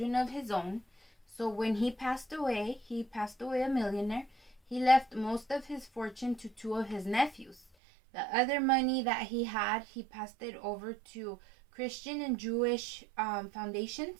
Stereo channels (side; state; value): left; drops out; at 7.6 s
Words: of his own, so when he passed away a millionaire. He left most of his fortune to two of his nephews. The other money that he had, he passed it over to Christian and Jewish foundations,